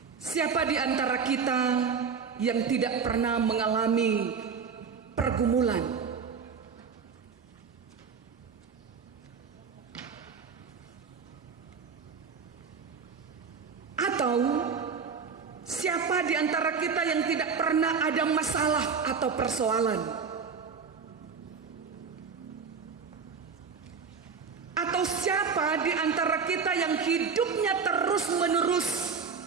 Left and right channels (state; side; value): quieter; left; 5.8 dB